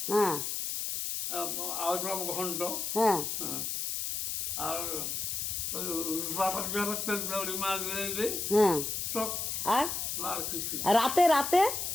হ্যাঁ আলুর ঘন্ট। হ্যাঁ হ্যাঁ, আর তেল মাছ দিয়ে হ্যাঁ টক। আর আর কিছু। রাতে রাতে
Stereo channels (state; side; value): noise; left; hiss, 2 dB below the sound